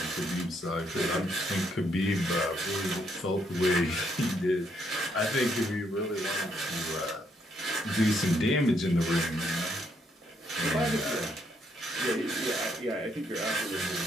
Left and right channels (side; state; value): both; normal; correlation 0.73